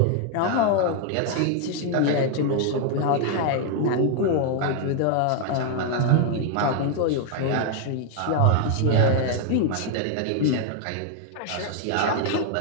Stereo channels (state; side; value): different; both; correlation 0.00